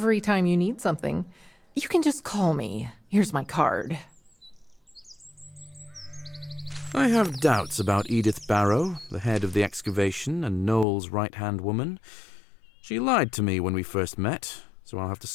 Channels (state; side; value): drops out; right; at 10.9 s